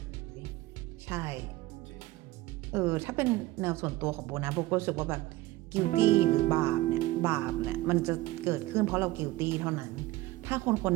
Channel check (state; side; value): quieter; left; 17.9 dB